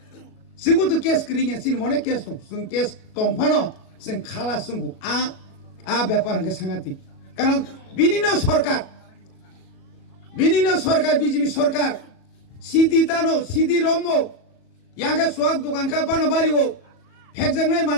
जोंबो তো কেস করিয়া সিন মনে কেস দङ जों কেস দংফানো जों খালা जोंखौ आ ব্যাপার কে সাংঘাতিক কারণ বিনিনো সরকার বিজেপি সরকার সিদি তানো সিদি রমো ইয়াঙ্কা সোয়াক দোকান কা বানো বাড়িও ফেকজাংনাই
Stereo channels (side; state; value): right; late; 37 ms